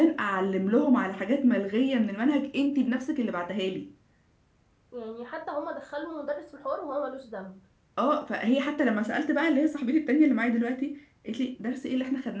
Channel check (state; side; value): identical; both; correlation 1.00